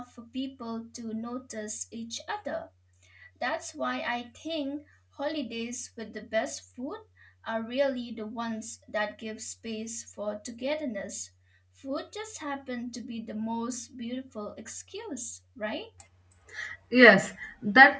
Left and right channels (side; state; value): both; identical; correlation 1.00